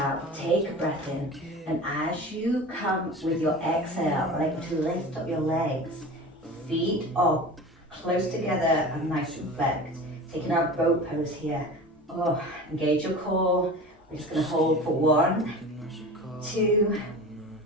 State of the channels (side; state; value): both; normal; correlation 0.35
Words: take a breath in, and as you come with your exhale, like to lift up your legs, feet are close together and nice and flexed. Taking our boat pose here. Engage your core. We're just going to hold for 1, 2,